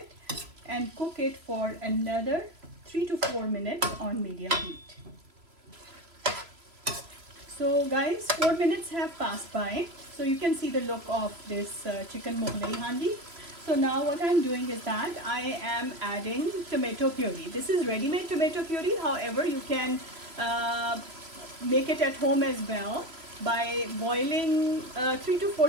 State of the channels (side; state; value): left; late; 3.0 ms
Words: and cook it for another 3 to 4 minutes on medium heat. So guys, 4 minutes have passed by. So you can see the look of this chicken Mughlai Handi. So now what I'm doing is that I am adding tomato puree. This is ready-made tomato puree. However, you can make it at home as well by boiling 3 to 4